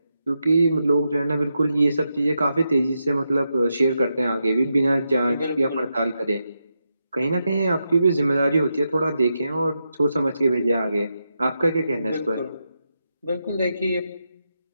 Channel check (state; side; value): inverted; both; correlation -0.86